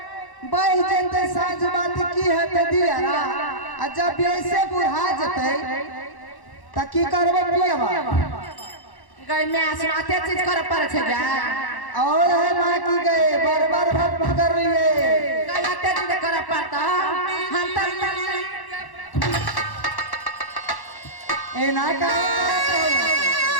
बह जते साँझ बात की है ते दियारा आ जब ऐसे बुढ़ा जते त की करबो पियबा गई में आसमाते चीज कर पर छे जा और है मां की गए बार-बार भक्त कर रही है गई आते चीज कर पड़ता हम त ए ना का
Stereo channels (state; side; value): late; right; 1.1 ms